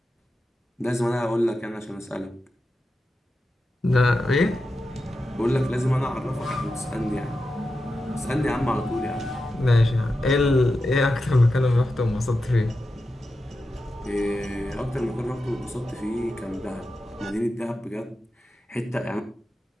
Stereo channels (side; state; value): both; normal; correlation 0.90